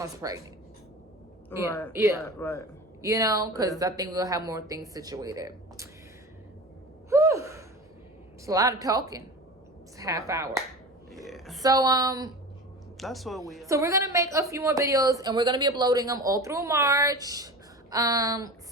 pregnant. Right. You know, because I think we'll have more things situated. Whew. It's a lot of talking. It's a half hour. Yeah. So that's what we are. So we're gonna make a few more videos, and we're gonna be uploading them all through March.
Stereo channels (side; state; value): both; normal; correlation 0.32